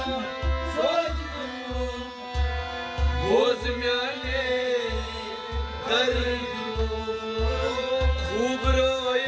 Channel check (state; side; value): identical; both; correlation 1.00